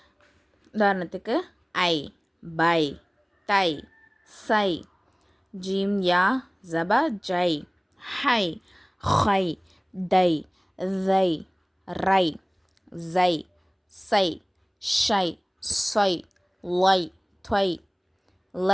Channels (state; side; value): identical; both; correlation 1.00